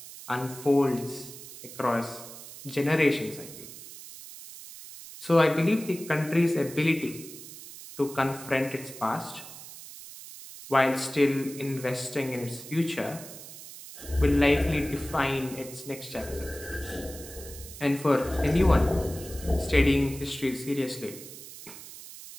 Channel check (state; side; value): noise; right; hiss, 14 dB below the sound